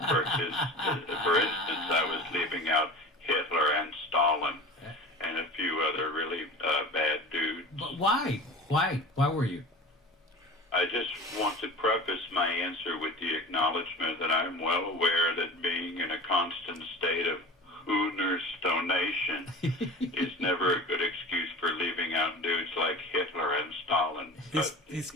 For instance, I was leaving out Hitler and Stalin and a few other really bad dudes. But why? Why were you? I just want to preface my answer with the acknowledgement that I'm well aware that being in a constant state of Hooner's stonation is never a good excuse for leaving out dudes like Hitler and Stalin. He's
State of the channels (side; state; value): both; normal; correlation 0.36